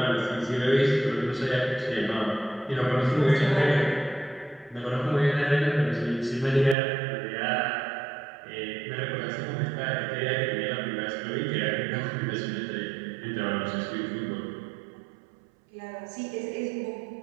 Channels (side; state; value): left; drops out; at 6.8 s